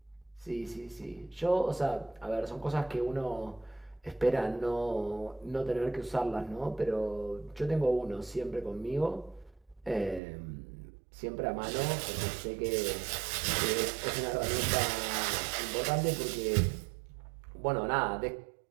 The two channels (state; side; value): drops out; left; at 10.2 s